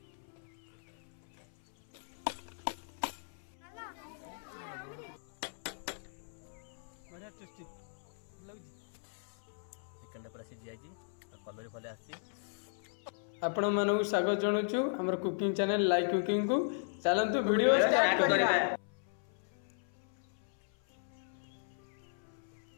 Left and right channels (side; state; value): right; silent; 53 dB below the other